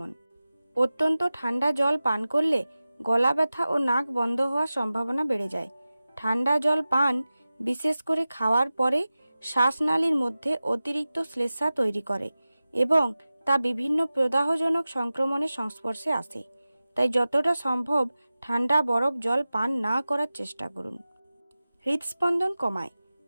অত্যন্ত ঠান্ডা জল পান করলে গলা ব্যথা ও নাক বন্ধ হওয়ার সম্ভাবনা বেড়ে যায়। ঠান্ডা জল পান, বিশেষ করে খাওয়ার পরে, শ্বাসনালীর মধ্যে অতিরিক্ত শ্লেষ্মা তৈরি করে এবং তা বিভিন্ন প্রদাহজনক সংক্রমণের সংস্পর্শে আসে। তাই যতটা সম্ভব ঠান্ডা বরফ জল পান না করার চেষ্টা করুন। হৃদস্পন্দন কমায়।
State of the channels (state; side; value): inverted; both; correlation -0.96